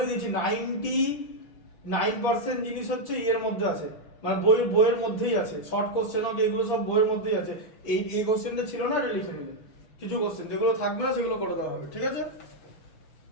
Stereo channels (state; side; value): late; right; 6.1 ms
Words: দিয়েছি, 99% জিনিস হচ্ছে এর মধ্যে আছে, মানে বইয়ের মধ্যেই আছে। শর্ট কোশ্চেন হোক, এগুলো সব বইয়ের মধ্যেই আছে। এই কোশ্চেনটা ছিল না, এটা লিখে নিলে। কিছু কোশ্চেন যেগুলো থাকবে না সেগুলো করে দেওয়া হবে, ঠিক আছে?